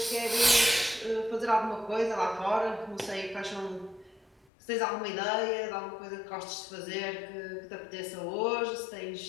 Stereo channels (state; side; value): drops out; right; at 4.5 s